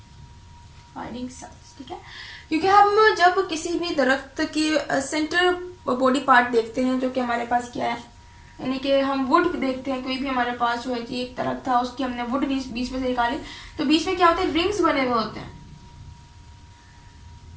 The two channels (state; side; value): identical; both; correlation 1.00